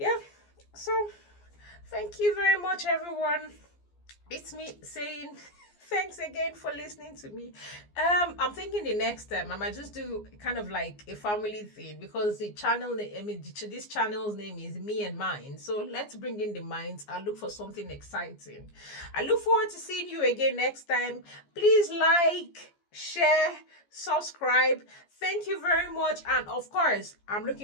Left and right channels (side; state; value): right; late; 14 ms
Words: So thank you very much, everyone. It's me saying thanks again for listening to me. I'm thinking the next time I might just do kind of like a family thing, because the channel, I mean, this channel's name is Me and Mine. So let's bring in the minds. I look for something exciting. I look forward to seeing you again next time. Please like, share, subscribe. Thank you very much. And of course, I'm